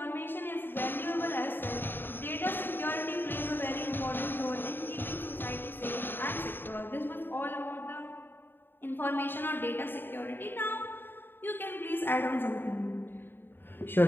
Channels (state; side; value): late; right; 0.098 ms